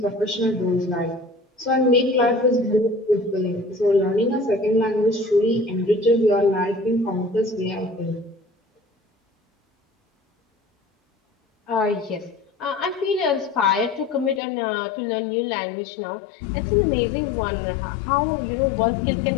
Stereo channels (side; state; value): right; drops out; at 14.4 s